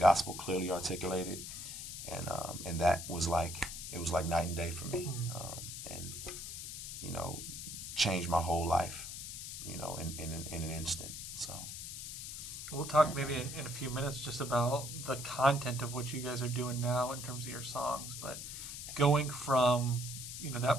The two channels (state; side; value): noise; left; hiss, 8 dB below the sound